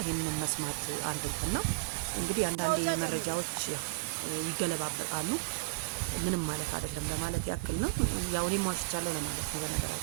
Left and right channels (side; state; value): left; quieter; 26.8 dB